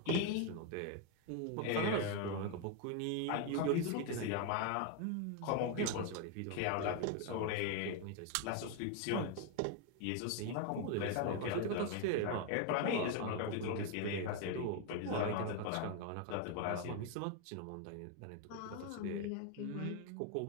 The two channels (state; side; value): different; both; correlation 0.01